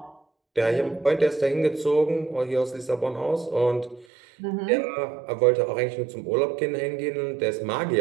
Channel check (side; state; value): left; drops out; at 4.0 s